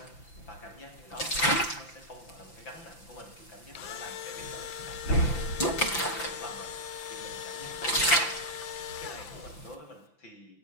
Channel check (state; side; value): late; right; 5.9 ms